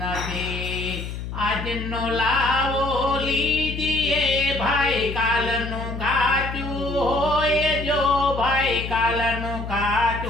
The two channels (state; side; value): noise; left; hum, 7 dB below the sound